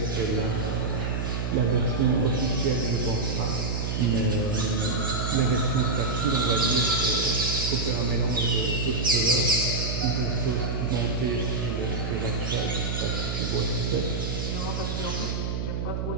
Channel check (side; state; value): right; noise; hum, 2 dB below the sound